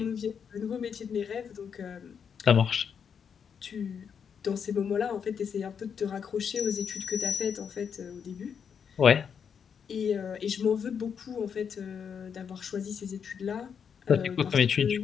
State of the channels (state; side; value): quieter; right; 7.1 dB